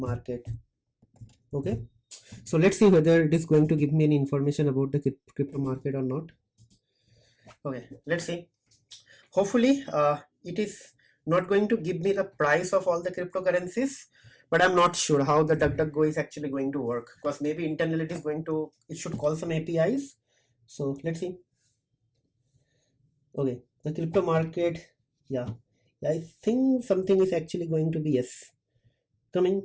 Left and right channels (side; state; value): both; identical; correlation 1.00